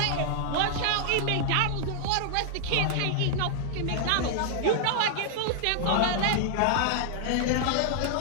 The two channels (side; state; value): both; different; correlation 0.00